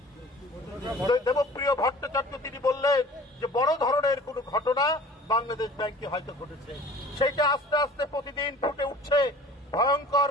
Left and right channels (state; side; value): normal; both; correlation 0.46